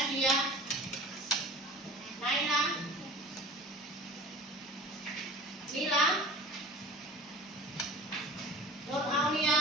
Naila. Mila. Nur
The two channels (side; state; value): both; normal; correlation 0.41